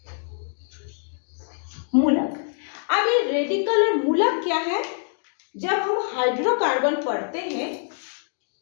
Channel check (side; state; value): right; silent; digital silence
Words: मूलक। अब ये रेडिकल और मूलक क्या है? जब हम